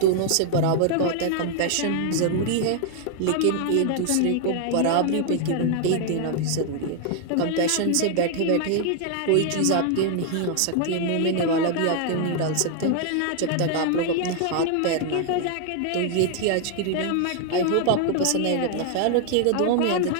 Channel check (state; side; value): different; both; correlation 0.00